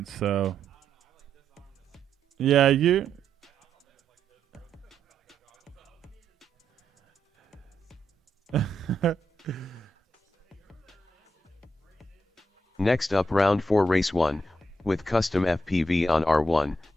so. Yeah, you. Next up, round 4, race 1, with custom FPV on R1,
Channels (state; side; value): normal; both; correlation 0.80